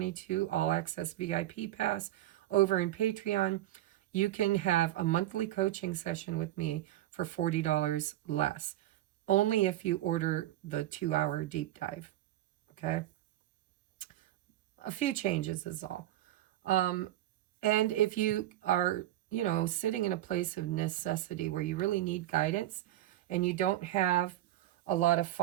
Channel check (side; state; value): left; quieter; 14.2 dB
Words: All Access VIP Pass over in Patreon, you can have a monthly coaching session with me for $40 less. Only if you order the 2-hour deep dive. Okay? A few changes is all. And if you are, you know, sitting in a place of necessity where you really need guidance and you don't have a lot of